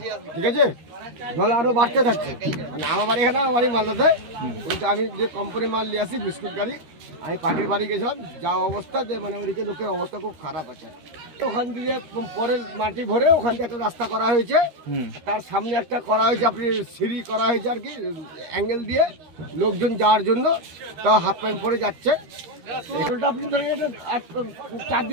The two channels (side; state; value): left; late; 13 ms